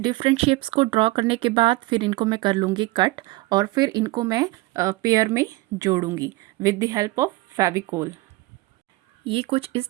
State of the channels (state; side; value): quieter; left; 20.3 dB